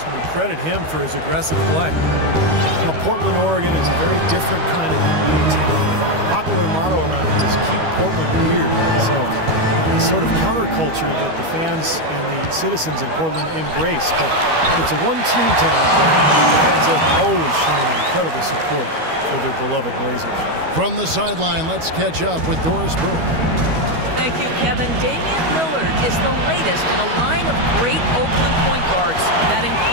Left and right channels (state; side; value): late; left; 12 ms